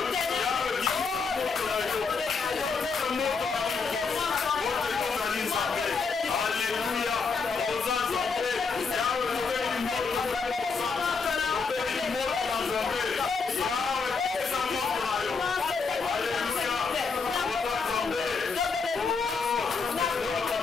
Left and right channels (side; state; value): right; quieter; 4.9 dB